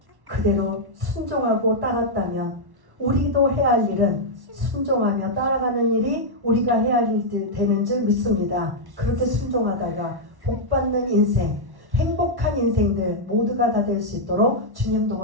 그대로 순종하고 따랐다면 우리도 해야 할 일은 순종하며 따라가는 일이 우리가 해야 할 일 되는 줄 믿습니다. 그렇게 순종하다가 복받는 인생, 행복한 인생들 모두가 다 될 수 있도록 주님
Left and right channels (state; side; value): late; left; 1.1 ms